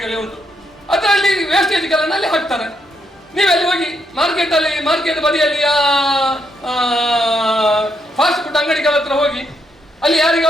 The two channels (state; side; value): normal; both; correlation 0.78